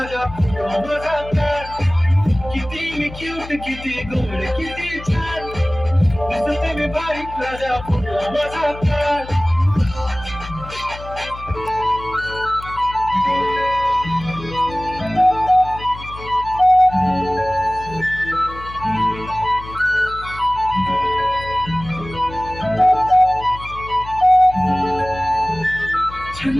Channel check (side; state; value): left; noise; hum, 14 dB below the sound